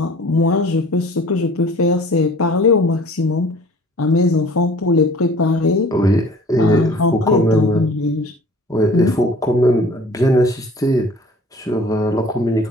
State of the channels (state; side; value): normal; both; correlation 0.48